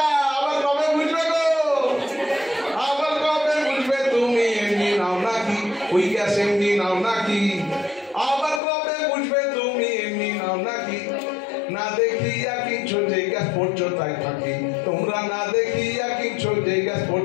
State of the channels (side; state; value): right; drops out; at 8.6 s